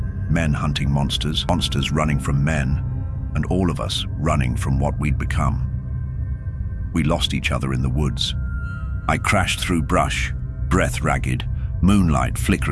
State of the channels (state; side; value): identical; both; correlation 1.00